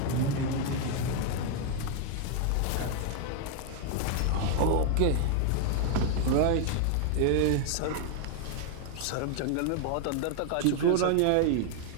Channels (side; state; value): both; different; correlation 0.00